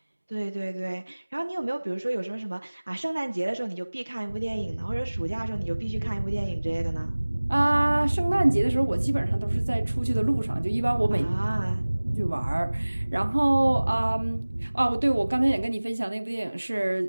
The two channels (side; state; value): both; inverted; correlation -1.00